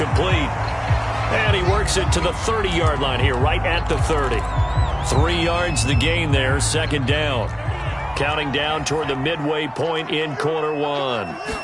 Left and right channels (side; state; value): both; identical; correlation 1.00